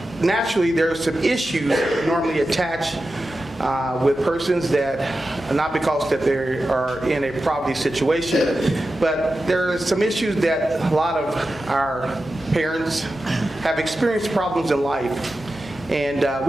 naturally, there are some issues that normally attach with persons that, not because that they are in a poverty situation, but there are some issues that a lot of our parents have experienced problems in life. And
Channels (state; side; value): normal; both; correlation 0.92